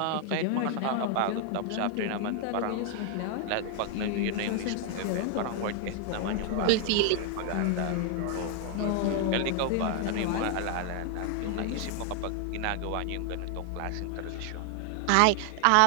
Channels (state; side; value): different; both; correlation 0.00